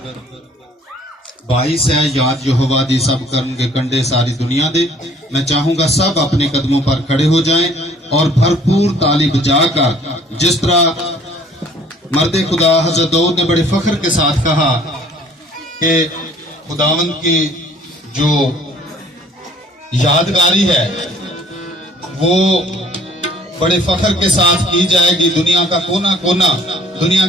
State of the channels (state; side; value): normal; both; correlation 0.55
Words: 22 है, याद यहोवा दी सब कर्म के कंडे सारी दुनिया दे। मैं चाहूंगा सब अपने कदमों पर खड़े हो जाएं और भरपूर ताली बजाकर, जिस तरह मर्दे खुदा हजरत दाऊद ने बड़े फख्र के साथ कहा कि खुदावंद की जो यादगारी है वो बड़े फख्र के साथ की जाएगी। दुनिया का कोना कोना, दुनिया